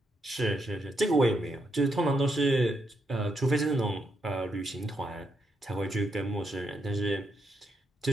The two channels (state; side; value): normal; both; correlation 0.80